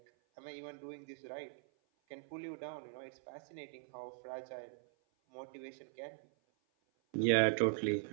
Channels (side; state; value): left; silent; 50 dB below the other